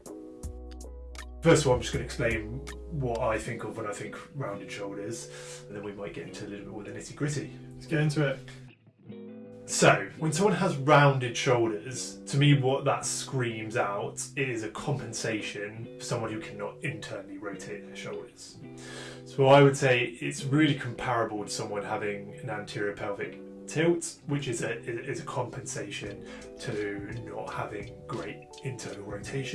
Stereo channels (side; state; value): both; identical; correlation 1.00